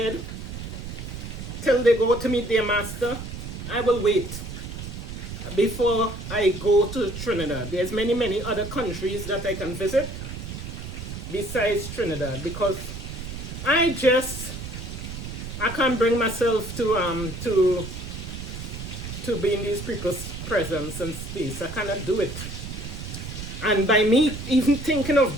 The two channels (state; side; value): noise; right; rumble, 8 dB below the sound